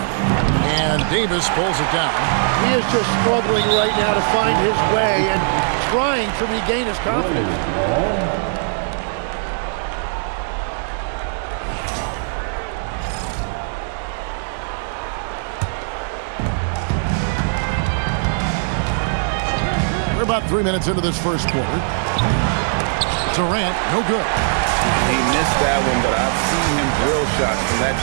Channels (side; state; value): left; silent; digital silence